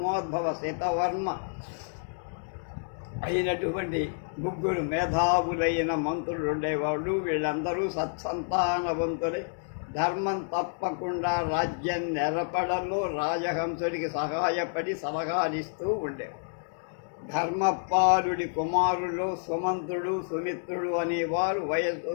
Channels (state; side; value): silent; right; digital silence